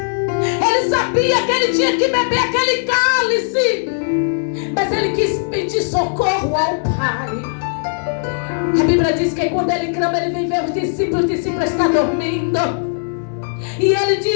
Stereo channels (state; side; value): silent; right; digital silence